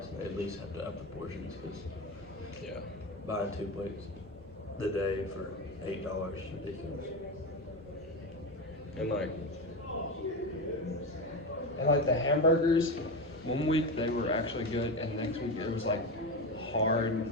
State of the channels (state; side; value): normal; both; correlation 0.19